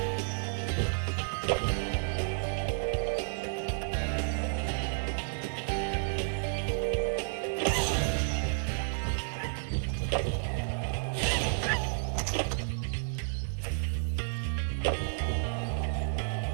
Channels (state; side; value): silent; left; digital silence